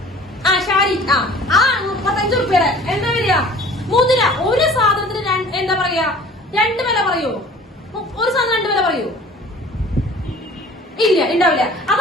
ഷാരി 35 രൂപയുടെ എന്താ വരിക? മുതിര. ഒരു സാധനത്തിന് എന്താ പറയാ? 2 വില പറയൂ? ഒരു സാധനം 2 വില പറയൂ? ഇല്ല, ഉണ്ടാവില്ല.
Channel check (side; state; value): both; normal; correlation 0.48